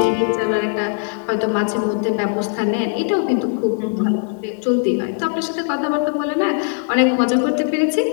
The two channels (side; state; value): right; silent; 55 dB below the other